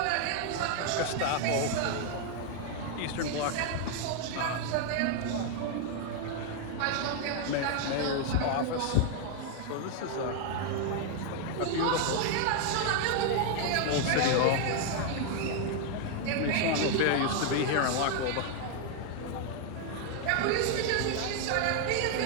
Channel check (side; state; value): both; different; correlation 0.00